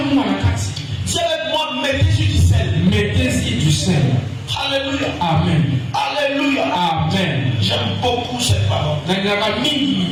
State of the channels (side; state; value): both; identical; correlation 1.00